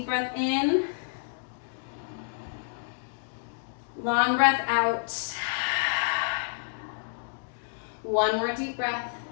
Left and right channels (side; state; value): right; silent; digital silence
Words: breath in, long breath out, one more deep breath.